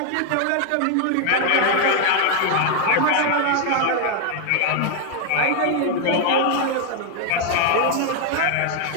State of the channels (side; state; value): both; different; correlation 0.00